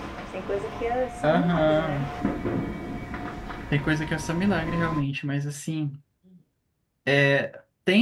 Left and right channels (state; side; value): identical; both; correlation 1.00